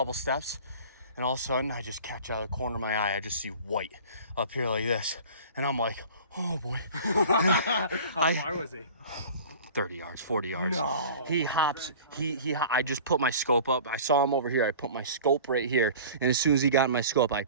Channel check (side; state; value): both; inverted; correlation -0.42